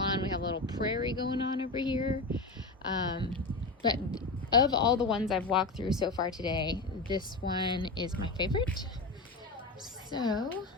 We have a little prairie going on over here. But of all the ones I've walked through so far today, this one is my favorite. So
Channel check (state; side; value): quieter; right; 3.4 dB